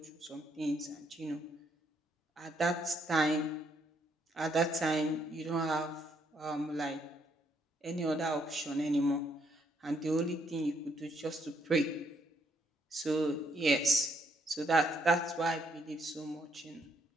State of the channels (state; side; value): normal; both; correlation 0.72